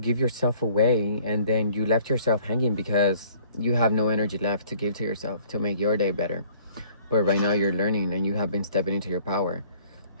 yourself away, and then you left yourself hanging because you have no energy left to give to yourself to make your day better. But right now you're learning, and you have been stepping into your power,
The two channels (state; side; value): inverted; both; correlation -0.55